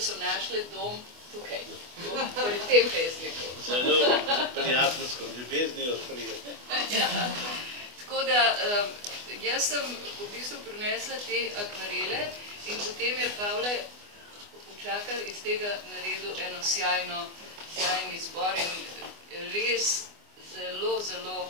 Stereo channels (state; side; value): late; left; 24 ms